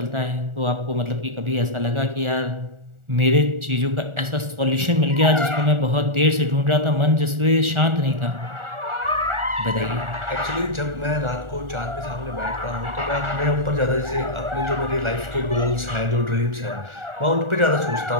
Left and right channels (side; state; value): left; late; 1.4 ms